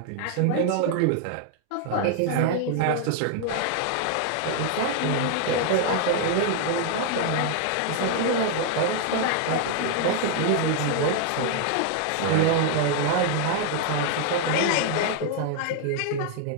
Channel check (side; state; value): both; different; correlation 0.00